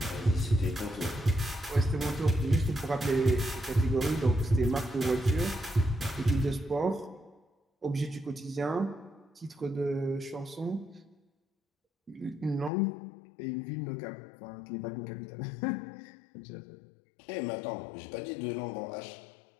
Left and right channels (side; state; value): right; drops out; at 12.7 s